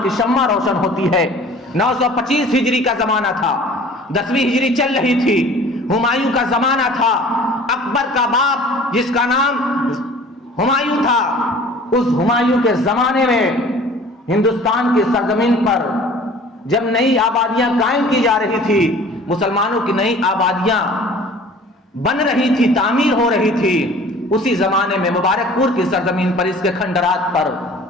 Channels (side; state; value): both; normal; correlation 0.47